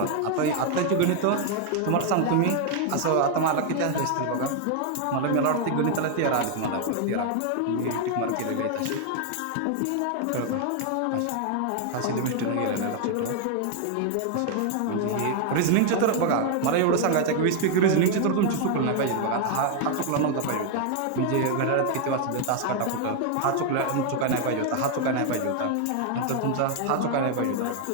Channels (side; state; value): both; different; correlation 0.00